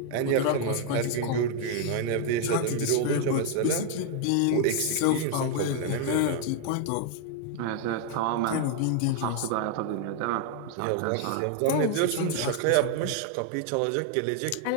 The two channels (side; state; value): both; different; correlation 0.00